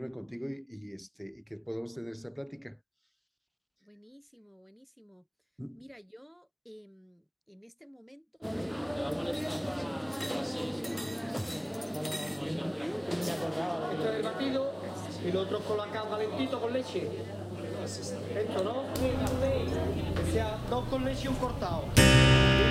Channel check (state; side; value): identical; both; correlation 1.00